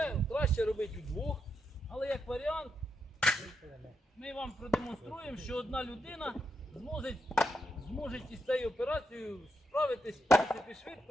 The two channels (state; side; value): normal; both; correlation 0.82